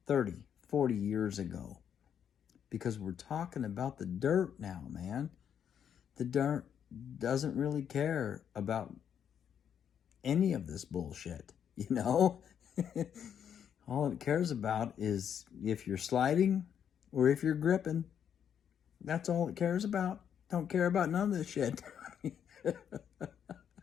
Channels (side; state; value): right; quieter; 8.5 dB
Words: 30, 40 years ago. Because we're talking about the dirt now, man. The dirt doesn't really care about any of this bullshit, you know? All it cares about is if you're sliding or if you're gripping. That's all it cares about. Don't care about none of this shit.